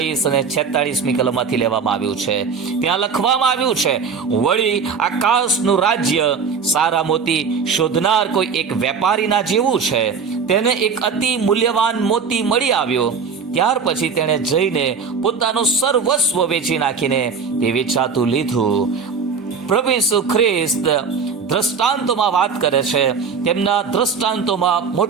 અને 46મી કલમમાંથી લેવામાં આવ્યું છે. ત્યાં લખવામાં આવ્યું છે, વળી આકાશનું રાજ્ય સારા મોતી શોધનાર કોઈ એક વેપારીના જેવું છે. તેને એક અતિ મૂલ્યવાન મોતી મળી આવ્યો. ત્યાર પછી તેણે જઈને પોતાનું સર્વસ્વ વેચી નાખીને તે વેચાતું લીધું. પ્રભુ ઈસુ ખ્રિસ્ત દ્રષ્ટાંતોમાં વાત કરે છે. તેમના દ્રષ્ટાંતોમાં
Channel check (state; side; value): quieter; left; 5.7 dB